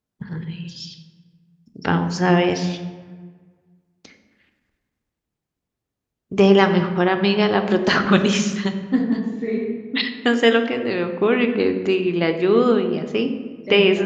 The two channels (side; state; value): both; identical; correlation 1.00